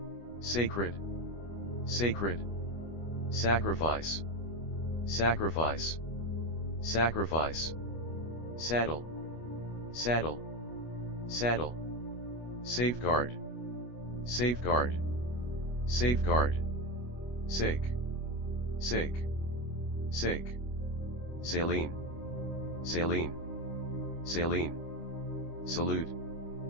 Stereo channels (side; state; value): right; late; 25 ms